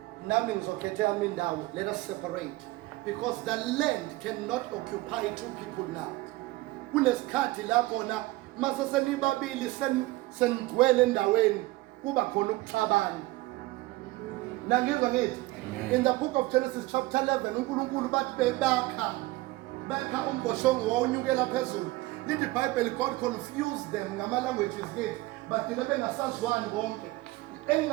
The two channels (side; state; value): left; quieter; 19.9 dB